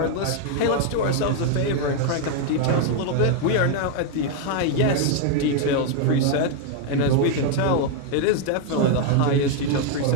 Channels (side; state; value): both; different; correlation 0.01